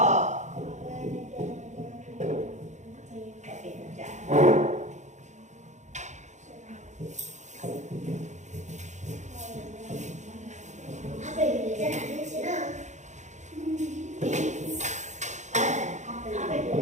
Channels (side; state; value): left; late; 0.34 ms